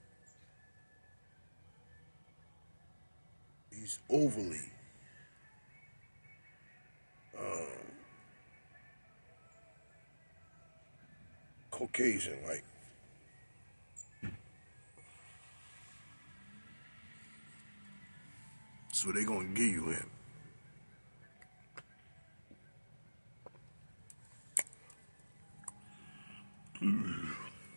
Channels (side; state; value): both; inverted; correlation -1.00